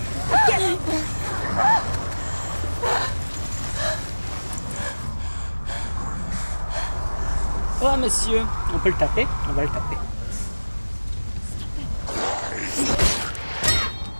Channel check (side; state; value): both; inverted; correlation -1.00